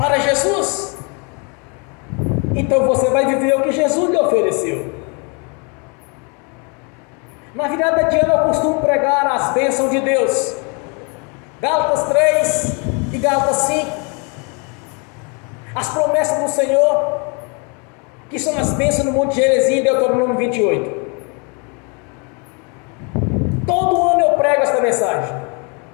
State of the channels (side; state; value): right; quieter; 34.2 dB